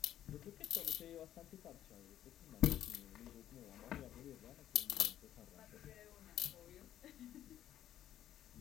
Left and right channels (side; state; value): right; quieter; 11.7 dB